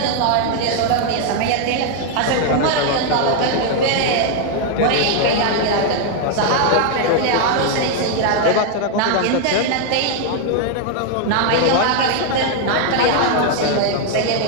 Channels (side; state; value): both; different; correlation 0.00